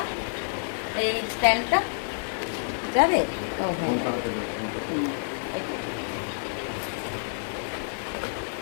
এই স্ট্যান্ডটা যাবে। ও হ্যাঁ,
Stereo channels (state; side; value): silent; right; digital silence